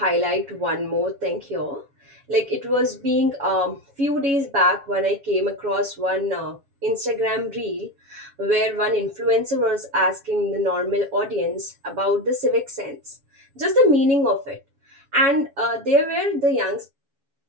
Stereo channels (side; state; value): left; late; 7.2 ms